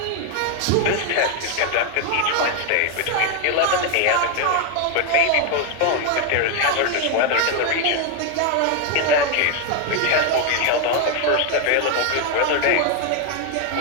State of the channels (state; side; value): different; both; correlation 0.01